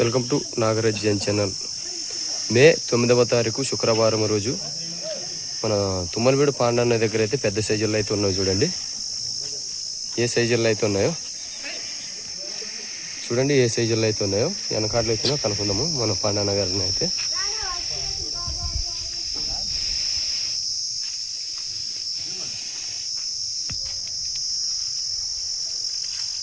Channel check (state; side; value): identical; both; correlation 1.00